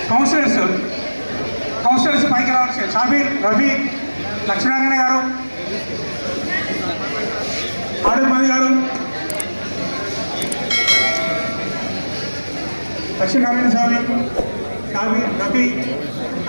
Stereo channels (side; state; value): both; inverted; correlation -1.00